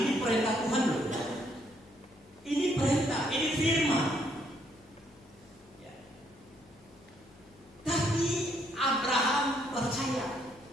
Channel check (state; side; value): noise; left; hum, 27 dB below the sound